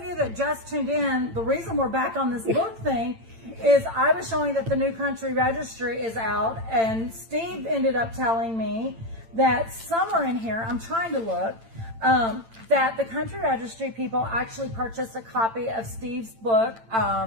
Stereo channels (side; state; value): left; late; 8.9 ms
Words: you that just tuned in, the reason we're back on this book thing is I was showing that the new Country Registry is out, and Steve ended up telling me that somewhere in here, I'm trying to look, that the Country Registry people actually purchased a copy of Steve's book,